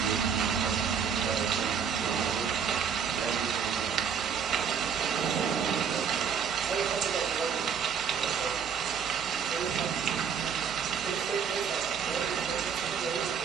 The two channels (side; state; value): left; quieter; 7.1 dB